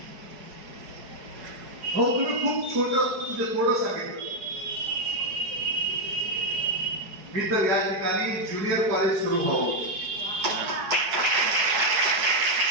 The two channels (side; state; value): left; late; 5.1 ms